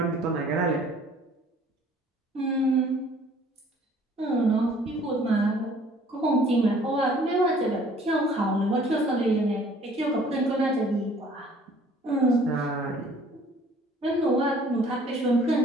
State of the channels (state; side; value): normal; both; correlation 0.55